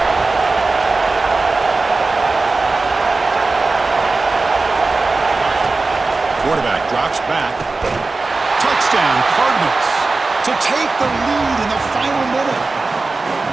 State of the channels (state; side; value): quieter; left; 3.7 dB